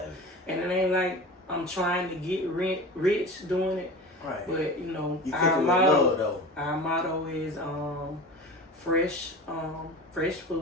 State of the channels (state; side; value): normal; both; correlation 0.33